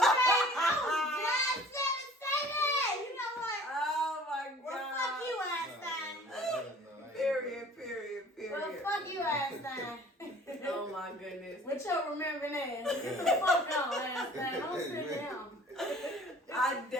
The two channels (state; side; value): normal; both; correlation 0.49